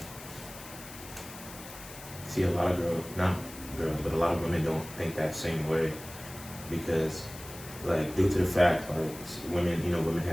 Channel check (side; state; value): left; noise; hiss, 15 dB below the sound